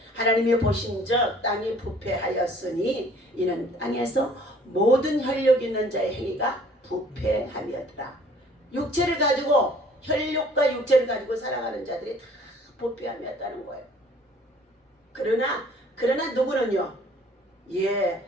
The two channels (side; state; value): both; normal; correlation 0.55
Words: 하나님이 보신즉 땅이 부패하였으니 이는 땅에서 모든 혈육 있는 자의 행위가 부패함이었더라. 육체를 가지고 혈육과 육체를 가지고 살아가는 자들이 다 부패함이었다는 거예요. 그러나 누구는요?